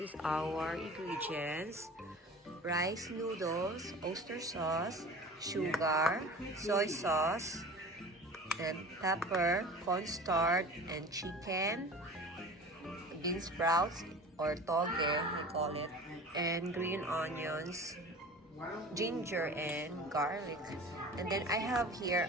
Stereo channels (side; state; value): both; normal; correlation 0.39